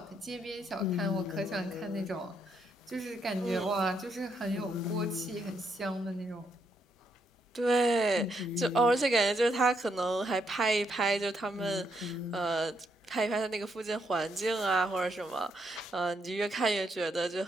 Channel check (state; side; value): normal; both; correlation 0.76